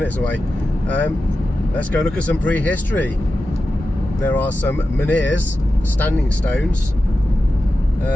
away. Let's go look at some prehistory. There are some menhirs, standing stones.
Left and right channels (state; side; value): normal; both; correlation 0.92